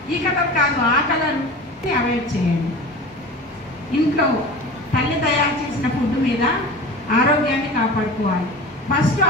ఈ కలర్ కాదు ఆ కలర్ అవాయిడ్ చేయండి. ఇంట్లో తల్లి తయారు చేసిన ఫుడ్ మీద ఆరోగ్యాన్ని కాపాడుకోవాలి. ఫస్ట్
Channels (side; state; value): both; normal; correlation 0.35